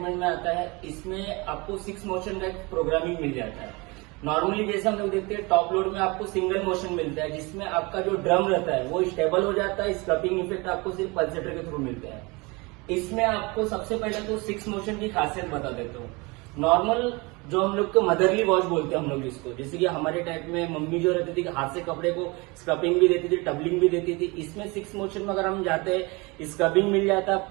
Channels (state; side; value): quieter; left; 26.2 dB